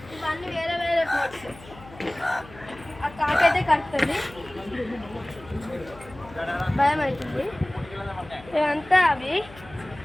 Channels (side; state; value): left; noise; hum, 20 dB below the sound